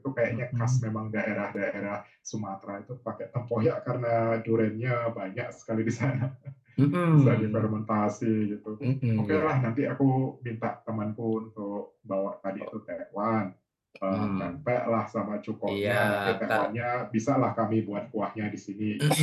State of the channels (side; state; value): both; identical; correlation 1.00